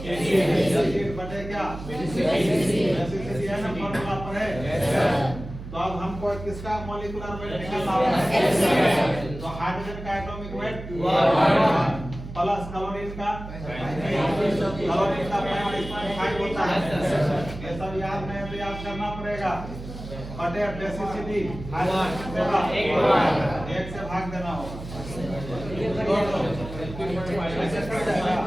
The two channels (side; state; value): right; noise; hum, 11 dB below the sound